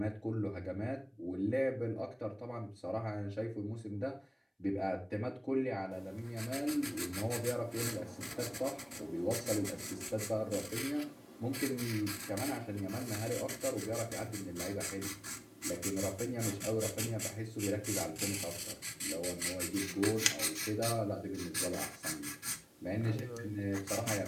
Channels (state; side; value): identical; both; correlation 1.00